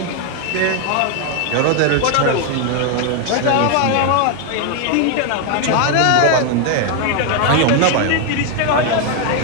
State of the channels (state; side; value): different; both; correlation 0.01